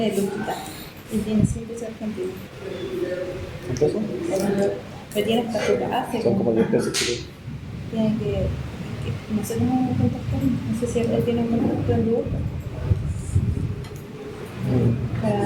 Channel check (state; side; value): identical; both; correlation 1.00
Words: lujita. Y tiene 100 pesos argentinos. ¿Un peso? Pero tiene hasta su base. Son como 10 pesos que Tiene que no sé cómo contactar. No sé si él tiene un contacto en Google